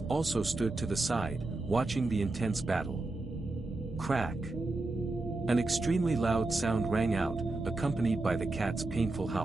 also stood to the side, watching the intense battle. Crack! An extremely loud sound rang out, accompanied by the cat's painful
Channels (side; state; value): left; quieter; 3.0 dB